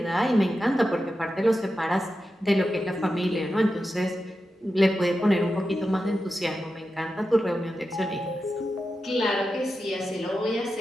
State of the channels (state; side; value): normal; both; correlation 0.90